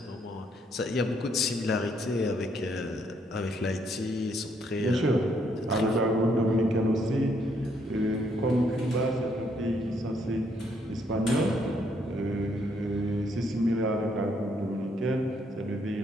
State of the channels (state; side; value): normal; both; correlation 0.71